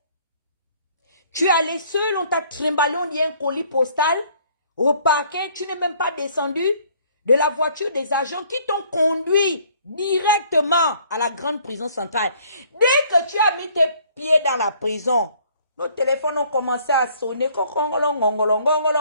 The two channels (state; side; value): inverted; both; correlation -0.60